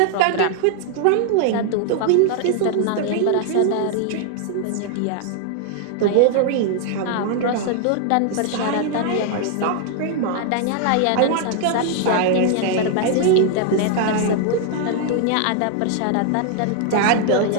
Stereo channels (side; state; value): both; different; correlation 0.00